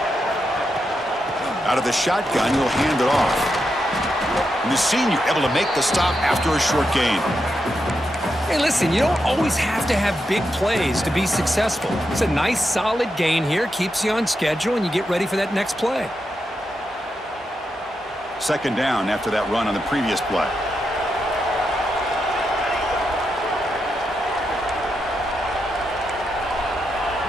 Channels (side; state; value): both; normal; correlation 0.85